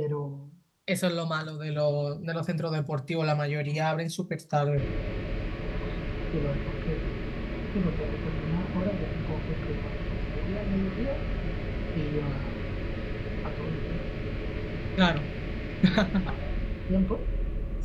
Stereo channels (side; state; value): both; identical; correlation 1.00